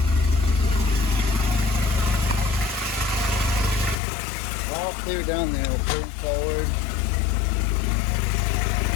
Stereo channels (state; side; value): drops out; right; at 4.0 s